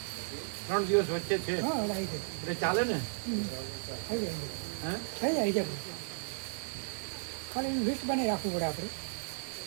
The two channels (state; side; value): silent; left; digital silence